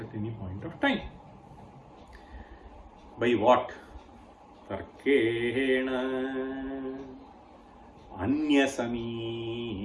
any point of time. By what? Tarkena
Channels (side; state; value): both; identical; correlation 1.00